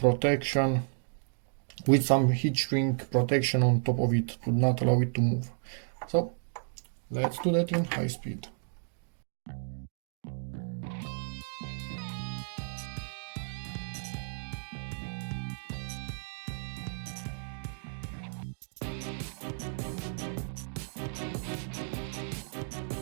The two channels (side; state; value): left; silent; digital silence